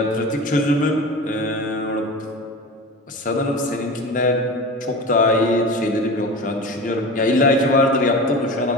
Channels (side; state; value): both; normal; correlation 0.31